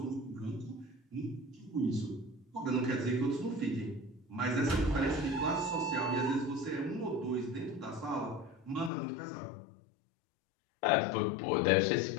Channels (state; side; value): drops out; right; at 8.9 s